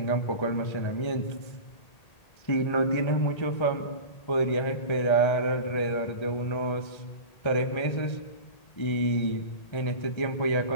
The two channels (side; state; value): right; late; 1.3 ms